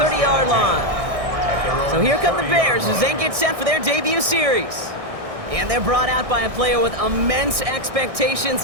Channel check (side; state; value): left; late; 1.6 ms